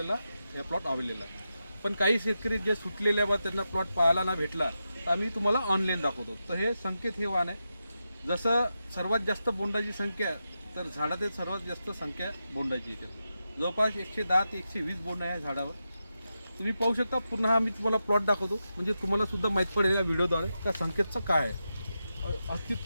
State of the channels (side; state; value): both; inverted; correlation -0.89